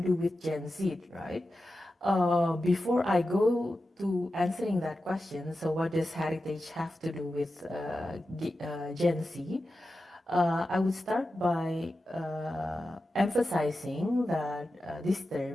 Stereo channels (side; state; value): both; normal; correlation 0.92